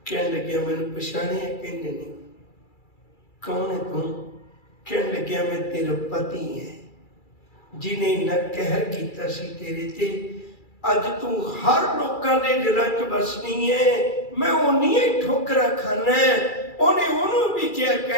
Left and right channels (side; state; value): right; late; 2.3 ms